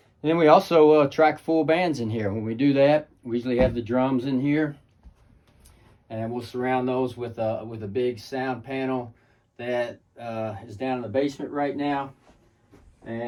And then we also track full bands in here. When we do that, we usually have the drums in here, and we'll surround those with a big sound panel that is down in the basement right now.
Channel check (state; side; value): identical; both; correlation 1.00